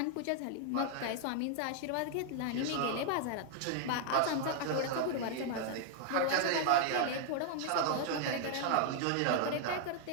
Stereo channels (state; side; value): different; both; correlation 0.00